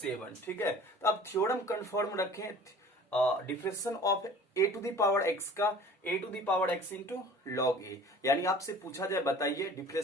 ठीक है। तो अब थ्योरम कंफर्म रखें, differentiation of a to the power x का a to the power x into log a, यानी आपसे पूछा जाए, बताइए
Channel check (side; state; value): both; normal; correlation 0.46